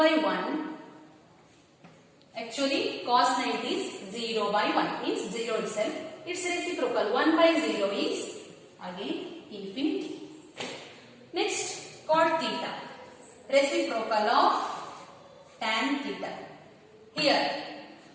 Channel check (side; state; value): both; identical; correlation 1.00